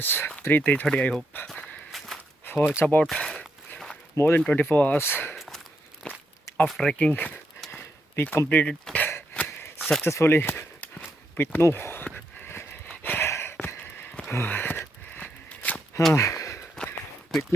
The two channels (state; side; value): normal; both; correlation 0.80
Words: 3:30 I hope. So it's about more than 24 hours of trekking. We completed successfully with no with